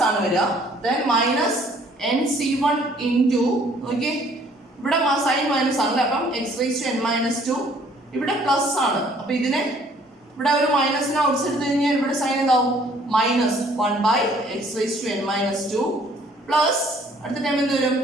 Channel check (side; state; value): both; normal; correlation 0.59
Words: ആണ് വരിക. Then minus nc1 into okay, ഇവിടെ സൈൻ മൈനസ് ആണല്ലേ, അപ്പം x raised to n minus 2 ഇവിടെ പ്ലസ് ആണ്. അപ്പൊ ഇതിനെ ഇവിടെ ഒരു മൈനസിനെ ഔട്ട്സ് എടുത്തു കഴിഞ്ഞാൽ ഇവിടെ സൈൻ എന്താവും? -1 by x raised to n minus 2 plus അടുത്ത ടൈം എന്ത് വരും?